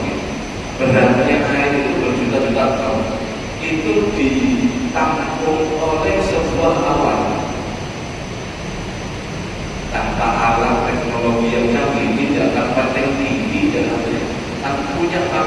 Beratnya air itu berjuta-juta ton. Itu ditampung oleh sebuah awan. Tanpa alat teknologi yang canggih, tidak tanpa teknik, tidak punya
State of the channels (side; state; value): both; identical; correlation 1.00